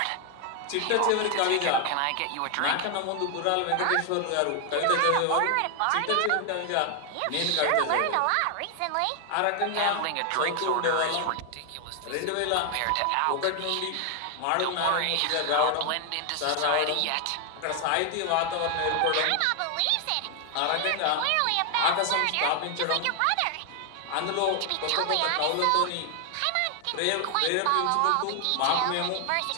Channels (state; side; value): different; both; correlation 0.00